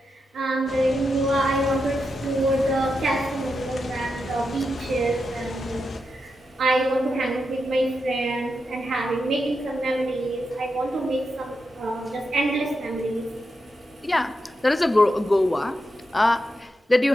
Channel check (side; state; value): both; normal; correlation 0.87